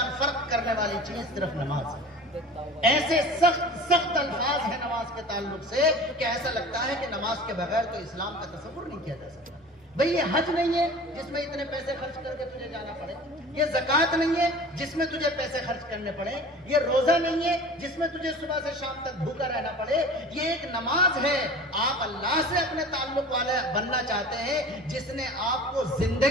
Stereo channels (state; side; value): normal; both; correlation 0.40